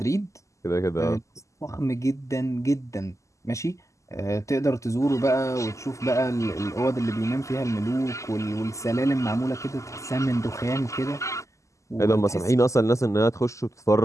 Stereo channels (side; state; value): right; late; 0.15 ms